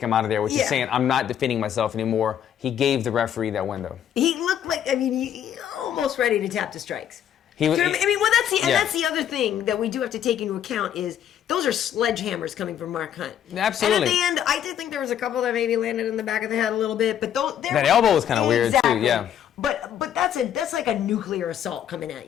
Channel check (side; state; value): right; quieter; 9.9 dB